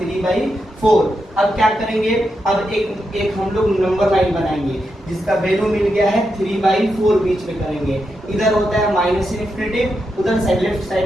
अब क्या करेंगे, अब एक हम लोग नंबर लाइन बनाएंगे जिसका वैल्यू मिल गया है 3/4, बीच में करेंगे। इधर होता है माइनस इन्फिनिटी, उधर साइड लेफ्ट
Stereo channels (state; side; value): normal; both; correlation 0.85